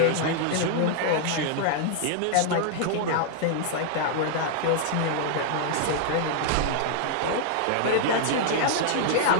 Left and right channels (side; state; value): both; different; correlation -0.01